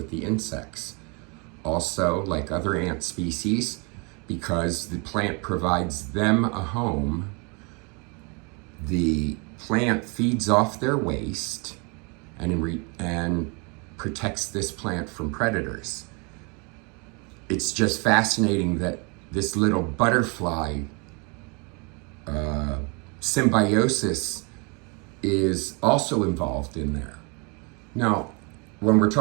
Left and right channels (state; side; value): quieter; left; 32.1 dB